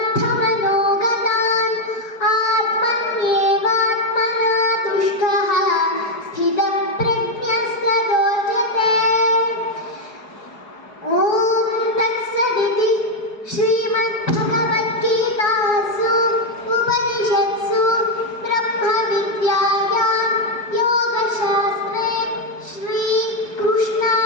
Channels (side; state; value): right; late; 4.8 ms